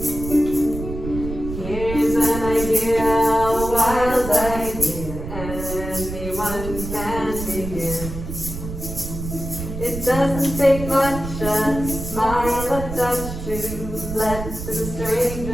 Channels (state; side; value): noise; right; rumble, 7 dB below the sound